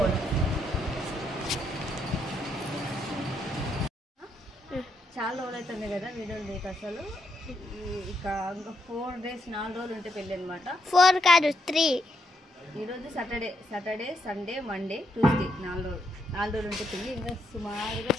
చాలా రోజులు అవుతుంది కదా వీడియోలు లేక. అసలు ఇక ఇంకా 4 days 4 రోజులు ఉంటే పెళ్ళి అనమాట. 4 కాదు 3. ఈరోజు సాటర్డే సండే మండే ట్యూస్డే 4 రోజులు ఉంటే పెళ్ళి. ఇంకా సుమారుగా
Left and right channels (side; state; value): both; normal; correlation 0.78